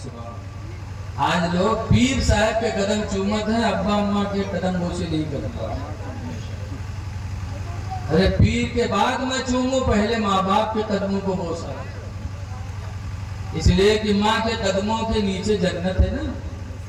سبحان اللہ۔ آج لوگ پیر صاحب کے قدم چومت ہیں، ابا اماں کے قدم بوسے نہیں کرتا۔ ارے پیر کے بعد میں چوموں، پہلے ماں باپ کے قدموں کو بوسا، اس لیے کہ ماں کے قدموں کے نیچے جنت ہے نا۔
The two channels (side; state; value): both; identical; correlation 1.00